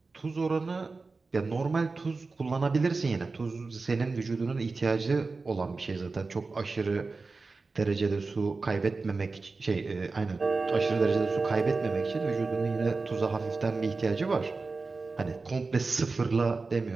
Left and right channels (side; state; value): left; quieter; 4.0 dB